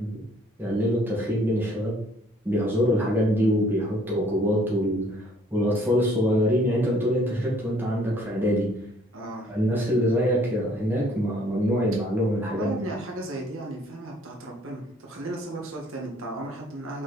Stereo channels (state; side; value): normal; both; correlation 0.60